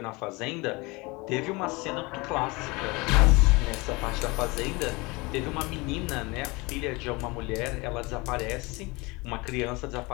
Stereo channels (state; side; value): quieter; right; 25.1 dB